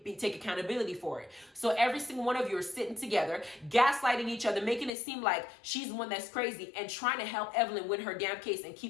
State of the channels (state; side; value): drops out; right; at 4.9 s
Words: accountability for it. So every single one of you are sitting together, gaslighting each other, making it seem like she's the one that's crazy and trying to help Evelyn win her damn case and